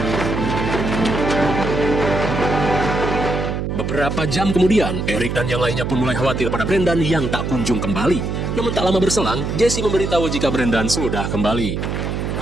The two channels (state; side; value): noise; right; hum, 3 dB below the sound